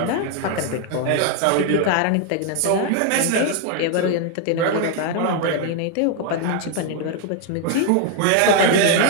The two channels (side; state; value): both; different; correlation 0.00